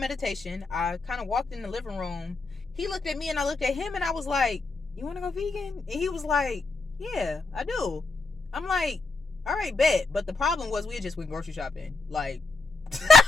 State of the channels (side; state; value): right; quieter; 3.8 dB